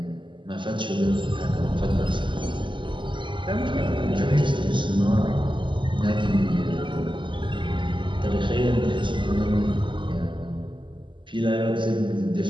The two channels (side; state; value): left; late; 0.24 ms